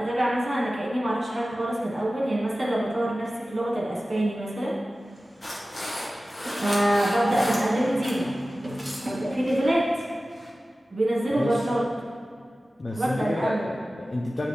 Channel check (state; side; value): normal; both; correlation 0.96